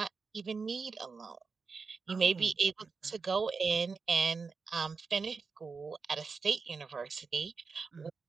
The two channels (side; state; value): left; quieter; 4.8 dB